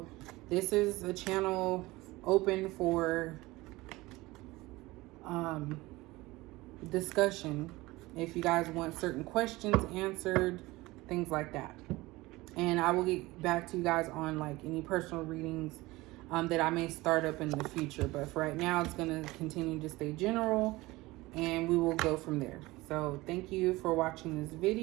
this is a channel open for discussion. If you guys want certain questions answered, things like that. And I will get back to you guys on like any personal readings that I may start up in the future. But for right now, it's going to continue to stay general, and we will go from there. So thank you for watching this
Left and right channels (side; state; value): left; quieter; 20.3 dB